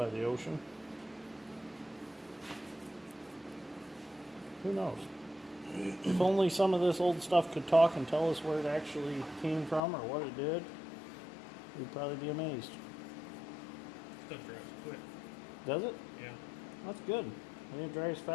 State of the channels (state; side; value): drops out; right; at 9.8 s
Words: the ocean. Who knows? If only some of this old stuff could talk and tell us where it actually came from or what it did, we'd probably be amazed. Stuff dries quick. Does it? Yeah. That's good. When it dries